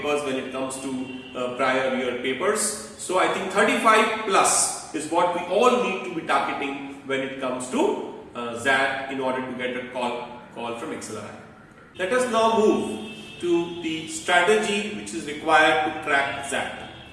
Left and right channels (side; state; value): both; identical; correlation 1.00